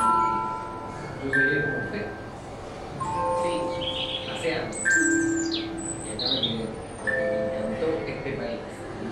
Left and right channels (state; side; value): identical; both; correlation 1.00